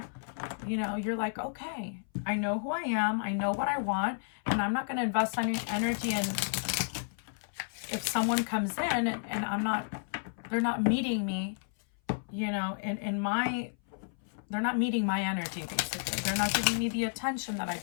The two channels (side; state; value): right; silent; 57 dB below the other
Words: you know, you're like, okay, I know who I am, I know what I want, and I'm not going to invest any energy in if someone comes in and they're not meeting me, you know, they're not meeting my energy, basically. They're not giving me the attention that I